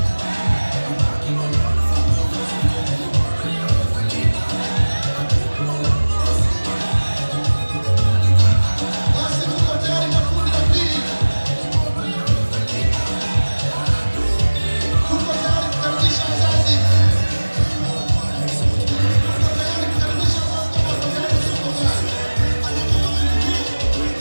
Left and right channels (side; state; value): both; inverted; correlation -1.00